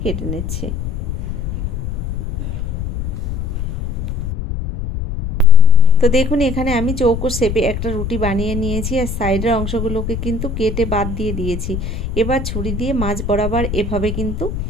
কেটে নিচ্ছি। তো দেখুন এখানে আমি চৌকো শেপে একটা রুটি বানিয়ে নিয়েছি, আর সাইডের অংশগুলোকে কিন্তু কেটে বাদ দিয়ে দিয়েছি। এবার ছুরি দিয়ে মাঝ বরাবর এভাবে কিন্তু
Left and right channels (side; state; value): left; noise; rumble, 4 dB below the sound